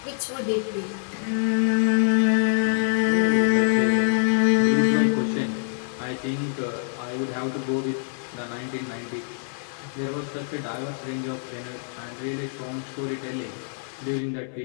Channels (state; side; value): silent; right; 60 dB below the other